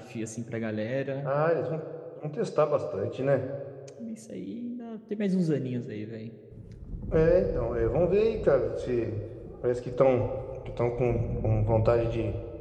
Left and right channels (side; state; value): both; identical; correlation 1.00